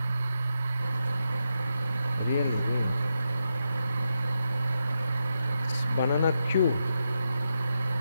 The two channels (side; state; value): both; inverted; correlation -0.86